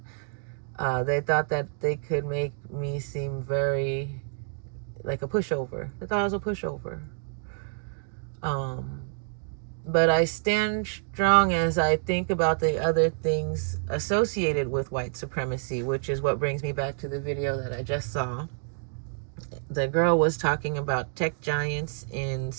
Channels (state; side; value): silent; left; digital silence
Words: they thought that they could make me seem very like a pushover. They thought I was a pushover. But I stand strong as I think about the other things associated with white supremacy, which is what brings me back to the video that I just saw. The girl was talking about tech giants in